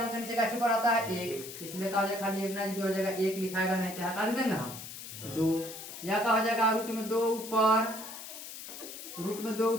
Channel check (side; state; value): left; noise; hiss, 11 dB below the sound